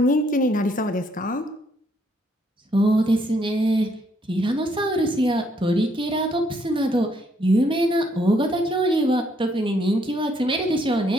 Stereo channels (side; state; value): both; normal; correlation 0.70